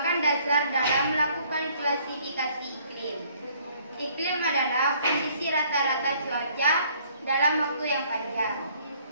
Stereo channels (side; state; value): both; inverted; correlation -0.61